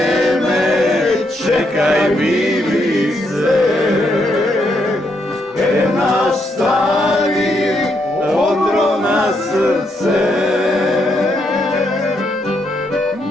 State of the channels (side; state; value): both; normal; correlation 0.77